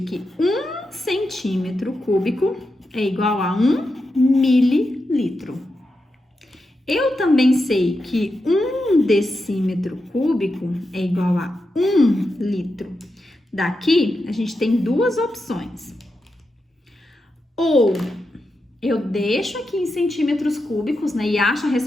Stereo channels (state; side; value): normal; both; correlation 0.88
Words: que 1 centímetro cúbico é igual a 1 mililitro. Eu também sei que 1 decímetro cúbico é igual a 1 litro. Daqui, a gente tem duas opções. Ou eu deixo aqui em centímetros cúbicos, né, e acho a